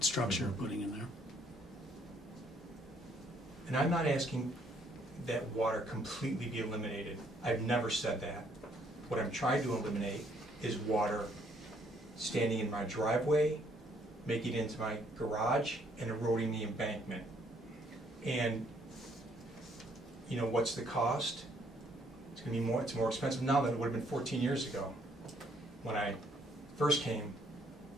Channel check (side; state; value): both; normal; correlation 0.67